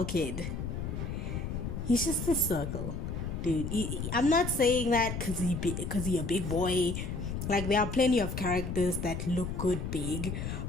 he's just a circle, dude. I'm not saying that because he a big boy. Like, there are plenty of characters that look good big,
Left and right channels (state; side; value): noise; left; rumble, 4 dB below the sound